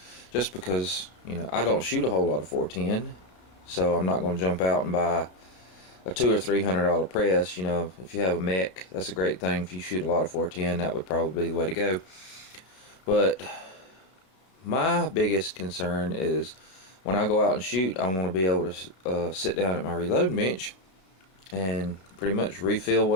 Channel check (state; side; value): late; right; 32 ms